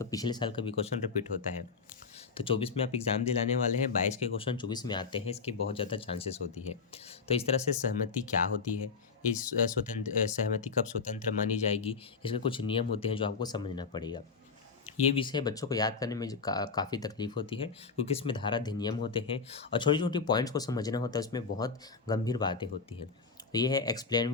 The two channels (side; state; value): right; quieter; 5.1 dB